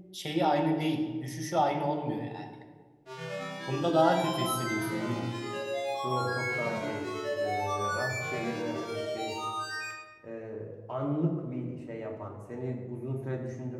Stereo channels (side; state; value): both; identical; correlation 1.00